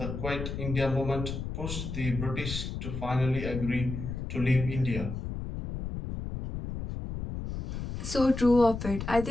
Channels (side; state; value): left; noise; rumble, 6 dB below the sound